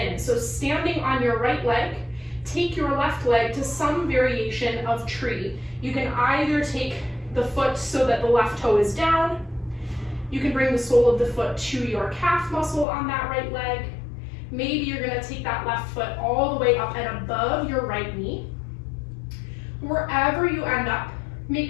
So standing on your right leg, take your left leg to some variation of tree. You can either take the foot so that the left toe is down. You can bring the sole of the foot to your calf muscle on that right leg. Maybe you're gonna take that left foot all the way up and above your right knee. Wherever you end up,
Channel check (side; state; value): right; drops out; at 12.9 s